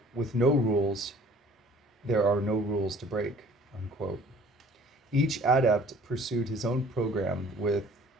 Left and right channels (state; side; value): normal; both; correlation 0.52